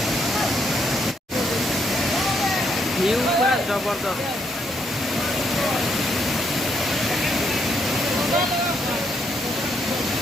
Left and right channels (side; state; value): both; normal; correlation 0.75